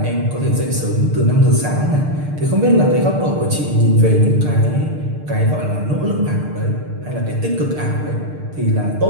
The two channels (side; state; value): left; late; 6.7 ms